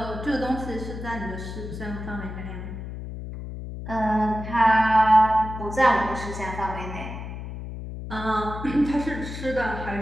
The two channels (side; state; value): left; noise; hum, 8 dB below the sound